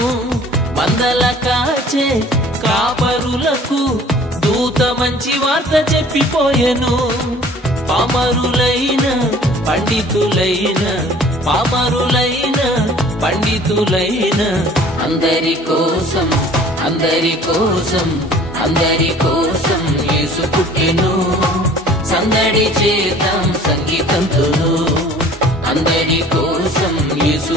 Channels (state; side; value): normal; both; correlation 0.50